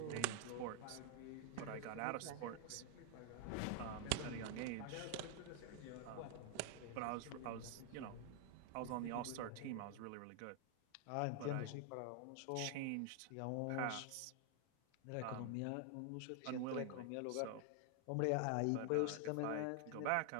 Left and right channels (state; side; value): different; both; correlation 0.00